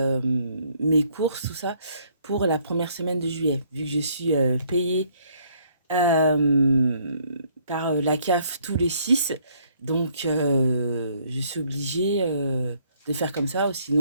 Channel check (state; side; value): inverted; both; correlation -0.65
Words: mes courses, tout ça, pour la première semaine de juillet, vu que je suis payée par la CAF tous les 6. Donc, je suis obligée de faire comme ça, ou